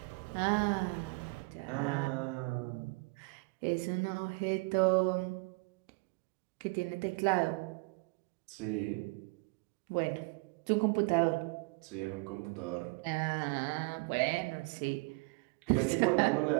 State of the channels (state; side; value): quieter; left; 28.1 dB